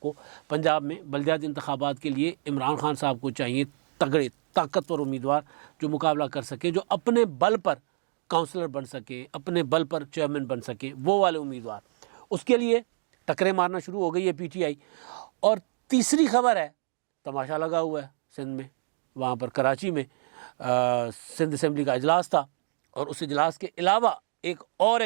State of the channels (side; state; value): left; silent; digital silence